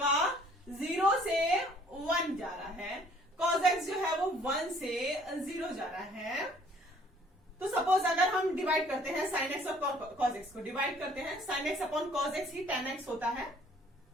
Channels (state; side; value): normal; both; correlation 0.58